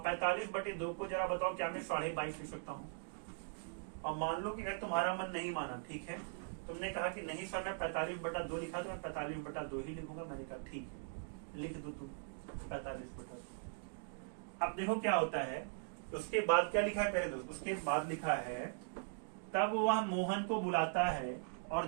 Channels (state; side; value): silent; left; digital silence